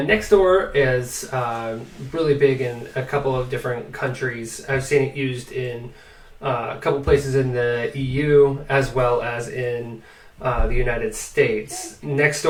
Nextdoor is really big in a couple of different countries. I've seen it used in a couple places in the EU as well as in the United States.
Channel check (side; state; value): both; identical; correlation 1.00